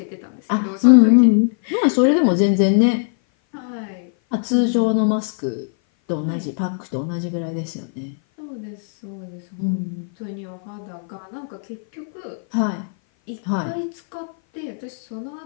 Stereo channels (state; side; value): silent; right; 57 dB below the other